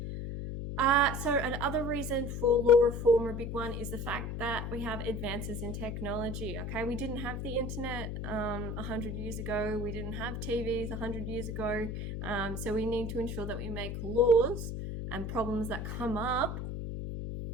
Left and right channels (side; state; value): left; noise; hum, 4 dB below the sound